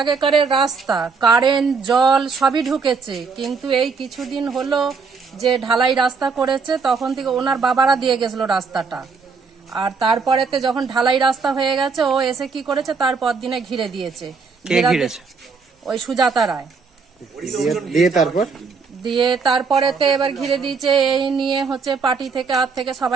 রাস্তা, কারেন্ট, জল সবই ঢুকেছে, কিন্তু এই কিছুদিন হলো যে ঢালাই রাস্তা করেছে তখন থেকে ওনার বাবারা দিয়ে গেছিল রাস্তাটা। আর তারপরেতে যখন ঢালাই রাস্তা হয়ে গেছে ও এসে কি করেছে, তারপর দিনে ঘিরে দিয়েছে। ওই সুজাতা রায় দিয়ে তারপরেতে এবার ঘিরে দিয়েছে। এই নিয়ে হচ্ছে পার্টি থেকে থেকে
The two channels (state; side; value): quieter; left; 5.0 dB